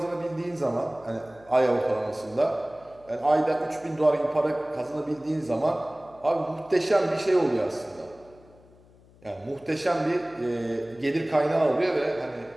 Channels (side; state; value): left; noise; hum, 27 dB below the sound